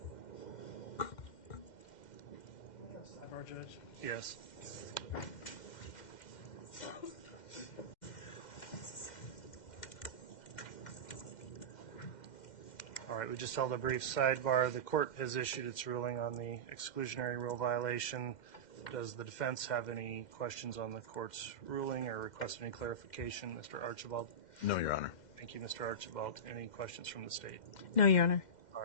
Our judge. Yes. All right, we just held a brief sidebar. The court has issued its ruling on the exclusionary rule violation. Does the defense have any questions on the court's ruling or request any clarification? Mr. Archibald? No, Your Honor. Thank you, Mr. Archibald. Any questions from the state? No, Your Honor. All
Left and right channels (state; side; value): late; right; 2.1 ms